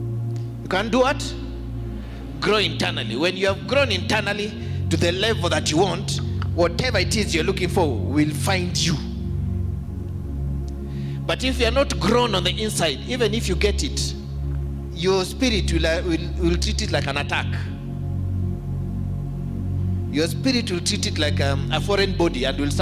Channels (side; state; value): both; identical; correlation 1.00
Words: You can do what? Grow internally. When you have grown internally to the level that you want, whatever it is you're looking for will find you. But if you're not grown on the inside, even if you get it, your spirit will treat it like an attack. Your spirit will treat it like a foreign body and will